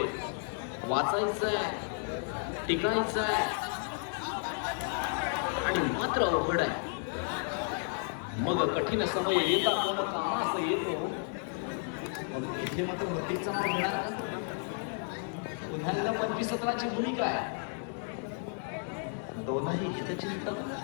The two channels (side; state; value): right; silent; 56 dB below the other